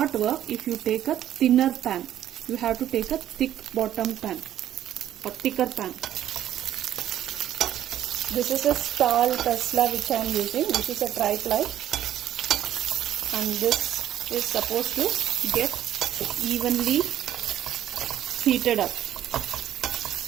work if you take a thinner pan. You have to take a thick bottom pan or thicker pan. This is a Stahl Tesla which I am using, which is a tri-ply, and this is supposed to get evenly heated up.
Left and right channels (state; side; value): quieter; left; 11.7 dB